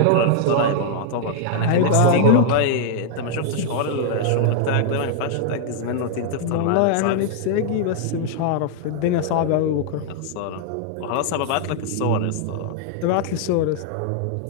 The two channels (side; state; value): both; different; correlation 0.00